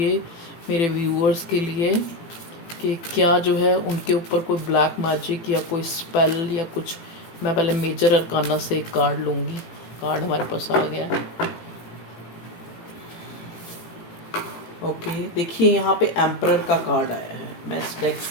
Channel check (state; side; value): late; right; 18 ms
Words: मेरे व्यूअर्स के लिए कि क्या जो है उनके ऊपर कोई ब्लैक मैजिक या कोई स्पेल या कुछ। मैं पहले मेजर अरकाना से एक कार्ड लूँगी। कार्ड हमारे पास आ गया। ओके, देखिए यहाँ पे एम्परर का कार्ड आया है। मैं इस डेक